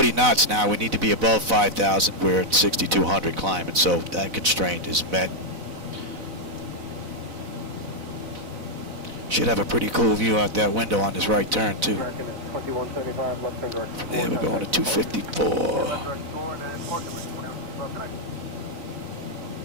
knots now. We need to be above 5,000. We're at 6,200 climbing, so that constraint is met. Should have a pretty cool view out that window on this right turn, too. From there, we're going to 254.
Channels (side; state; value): left; late; 4.0 ms